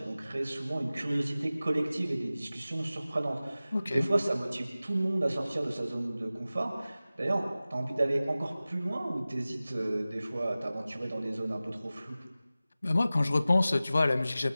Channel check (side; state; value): both; inverted; correlation -0.97